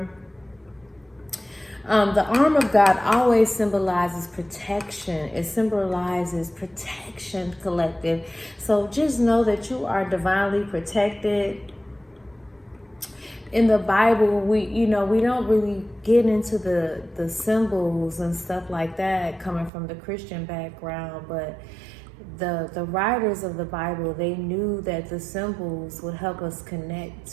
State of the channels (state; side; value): drops out; left; at 19.7 s